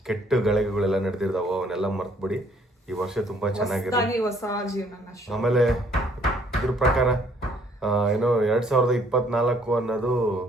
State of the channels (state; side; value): normal; both; correlation 0.63